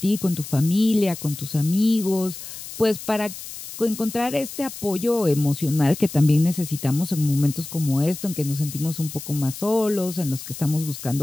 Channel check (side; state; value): left; noise; hiss, 11 dB below the sound